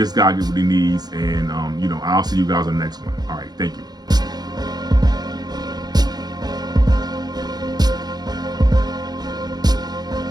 guy gets what he needs, and, you know, I'll see you guys on the next one. All right, thank you.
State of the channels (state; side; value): late; left; 0.19 ms